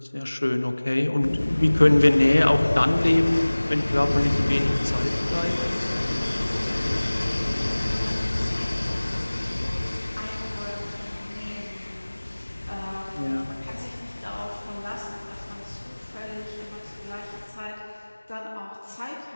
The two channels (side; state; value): both; inverted; correlation -1.00